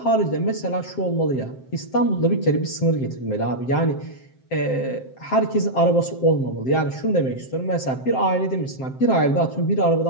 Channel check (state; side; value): late; right; 7.6 ms